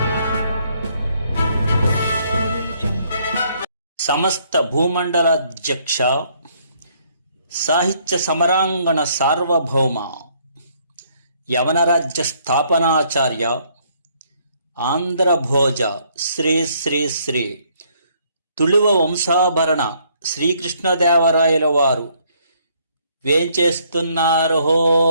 Audio Jungle. సమస్త భూమండలాధ్యక్ష, సాహిత్య సమరాంగణ సార్వభౌమ, యవనరాజ్య స్థాపనాచార్య, ఆంధ్రభోజ శ్రీ శ్రీ శ్రీ తుళువ వంశాభరణ శ్రీకృష్ణదేవరాయల వారు వేంచేస్తున్నారో.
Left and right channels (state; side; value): inverted; both; correlation -0.67